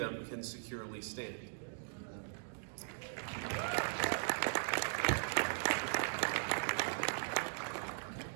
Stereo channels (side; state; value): left; silent; digital silence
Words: can securely stand.